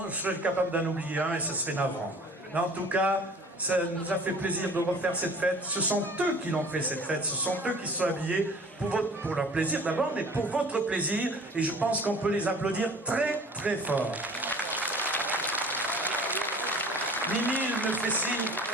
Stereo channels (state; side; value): normal; both; correlation 0.47